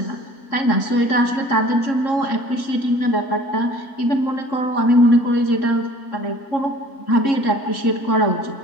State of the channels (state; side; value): late; right; 3.6 ms